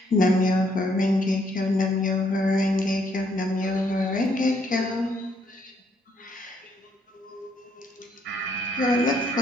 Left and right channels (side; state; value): both; normal; correlation 0.70